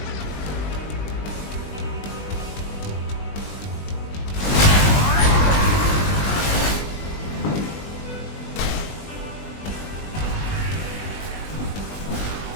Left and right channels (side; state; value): right; late; 20 ms